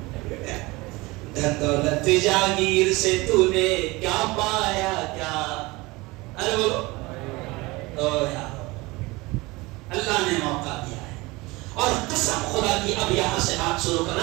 دھن دولت جاگیر سے تو نے کیا پایا کیا، ارے بولو تو یار اللہ نے موقع دیا ہے، اور قسم خدا کی اب یہاں سے بات شروع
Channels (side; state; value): left; quieter; 22.5 dB